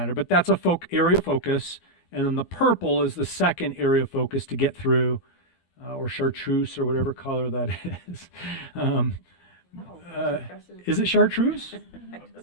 but that's a area of focus. And then the purple is the second area of focus to get through, or chartreuse or whatever color that is. Is it chartreuse?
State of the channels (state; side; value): late; right; 12 ms